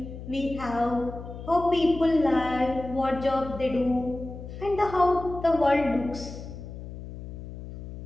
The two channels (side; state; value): left; noise; hum, 11 dB below the sound